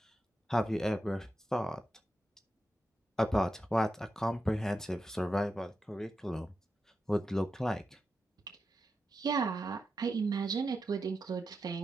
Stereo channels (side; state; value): both; normal; correlation 0.88